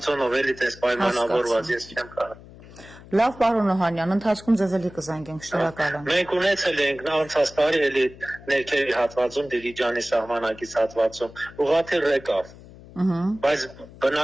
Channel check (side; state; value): left; noise; hum, 19 dB below the sound